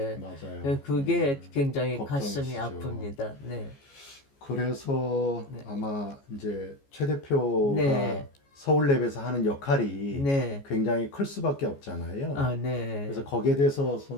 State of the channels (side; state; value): right; late; 14 ms